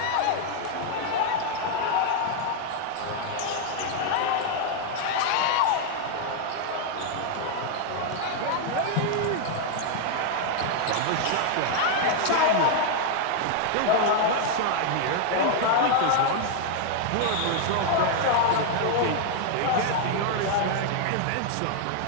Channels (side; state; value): both; different; correlation 0.00